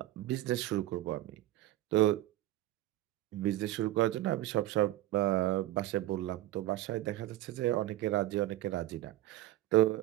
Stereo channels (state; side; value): quieter; left; 15.2 dB